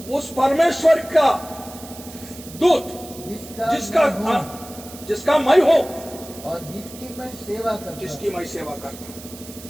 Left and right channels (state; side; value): noise; right; hiss, 16 dB below the sound